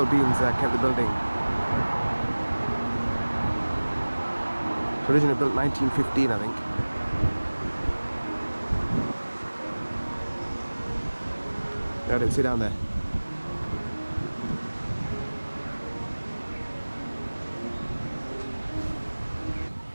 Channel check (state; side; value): inverted; both; correlation -1.00